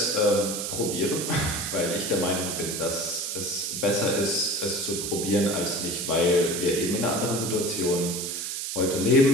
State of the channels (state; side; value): noise; right; hiss, 4 dB below the sound